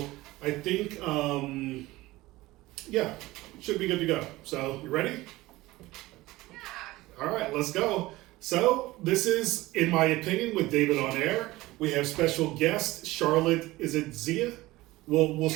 I think, yeah, should be good to go. So, you ready? Yeah. All right, let's go. So this is, in my opinion, with David on air. We have special guest Charlotte. Is it Zia? We'll Yeah.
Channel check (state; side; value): quieter; left; 18.9 dB